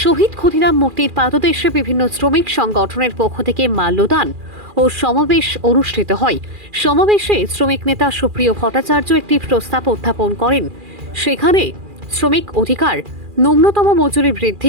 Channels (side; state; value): left; late; 2.4 ms